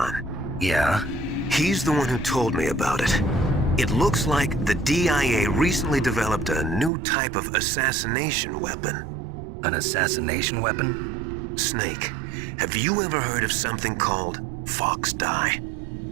Yeah? He's the one who told me about it. It looks like the DIA recently developed a new type of assassination weapon. An assassination weapon? Snake, have you ever heard of something called Fox Dye?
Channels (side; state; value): left; drops out; at 6.9 s